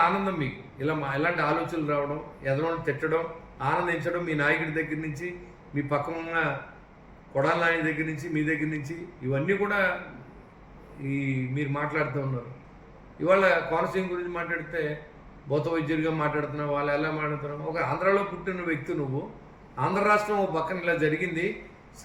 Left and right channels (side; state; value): both; identical; correlation 1.00